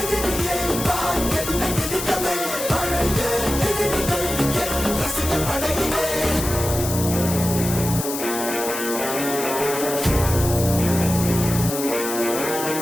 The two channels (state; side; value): noise; left; hiss, 6 dB below the sound